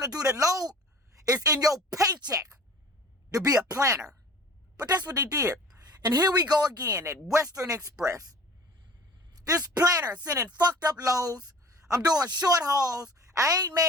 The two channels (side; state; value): both; normal; correlation 0.44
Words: to do the load is in your paycheck to be a planner. But that's what they did. And here we go again at Western Express. This planner sending fucked up loads. I'm doing short hauls. I ain't